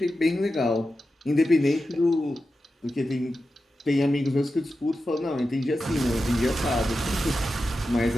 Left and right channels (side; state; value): both; normal; correlation 0.91